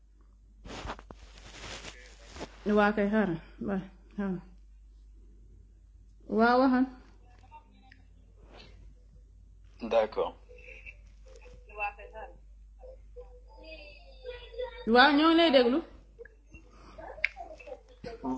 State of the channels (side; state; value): both; identical; correlation 1.00